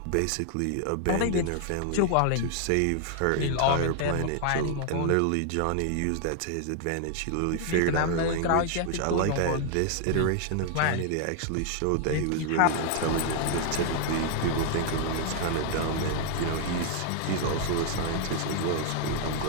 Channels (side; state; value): both; different; correlation 0.00